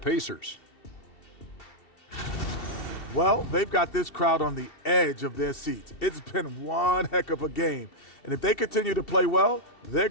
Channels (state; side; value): late; right; 2.7 ms